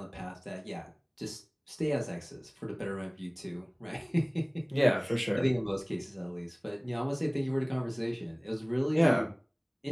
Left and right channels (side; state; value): both; identical; correlation 1.00